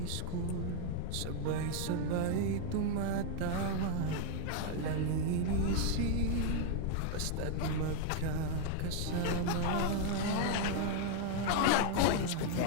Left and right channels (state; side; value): different; both; correlation 0.01